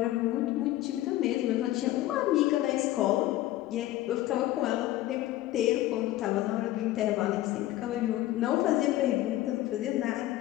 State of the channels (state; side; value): quieter; right; 15.3 dB